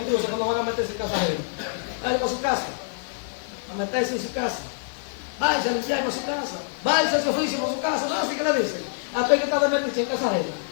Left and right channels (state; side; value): silent; right; 61 dB below the other